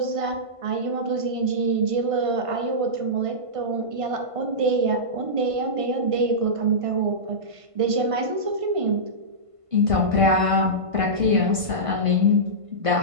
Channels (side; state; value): left; late; 1.5 ms